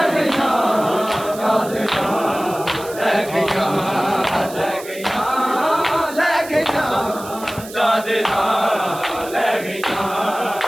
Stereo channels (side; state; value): right; noise; hiss, 16 dB below the sound